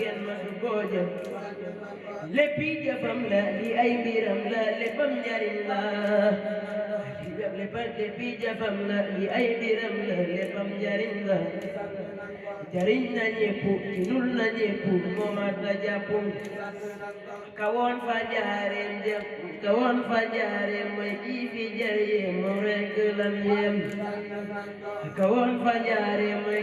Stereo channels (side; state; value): both; identical; correlation 1.00